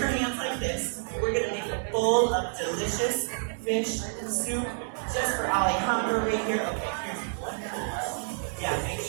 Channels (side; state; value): left; silent; digital silence